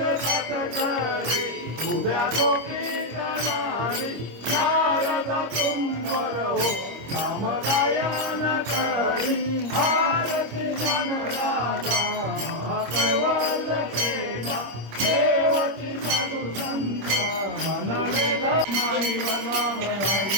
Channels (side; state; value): left; late; 25 ms